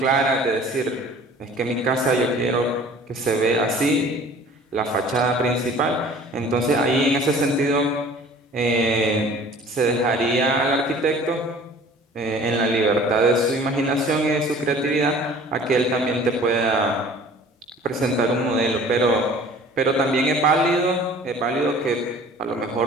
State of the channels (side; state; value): both; normal; correlation 0.48